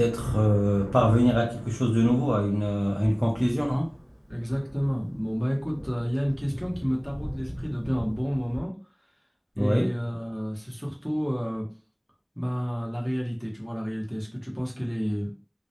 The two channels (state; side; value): identical; both; correlation 1.00